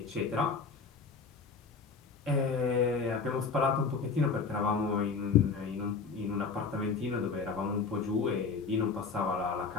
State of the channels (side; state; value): right; quieter; 5.0 dB